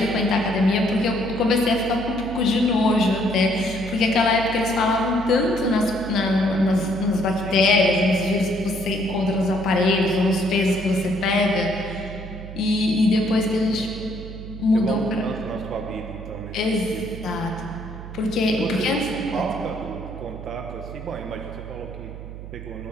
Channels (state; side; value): noise; right; hum, 11 dB below the sound